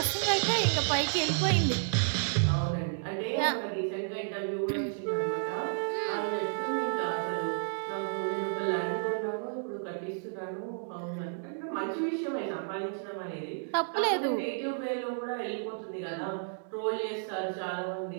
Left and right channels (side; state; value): left; silent; digital silence